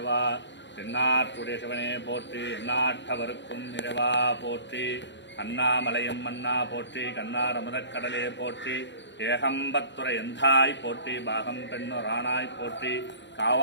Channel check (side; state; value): right; late; 0.52 ms